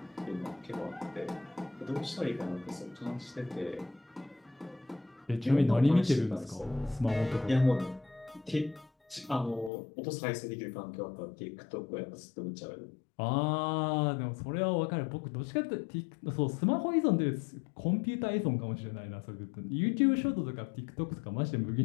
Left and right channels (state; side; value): drops out; right; at 9.7 s